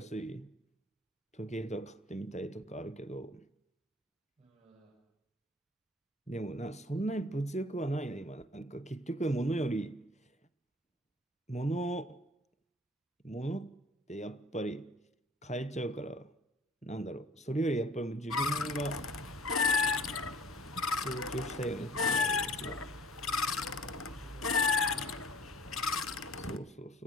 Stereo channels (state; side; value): normal; both; correlation 0.50